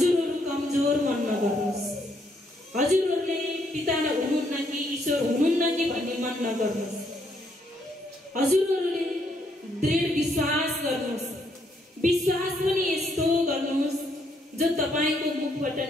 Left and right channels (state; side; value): normal; both; correlation 0.72